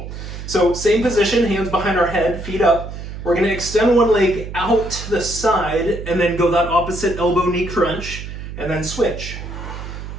So same position, hands behind our head, feet up. We're gonna extend one leg out to the side and then go that opposite elbow knee crunch and then switch.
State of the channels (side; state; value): right; noise; hum, 9 dB below the sound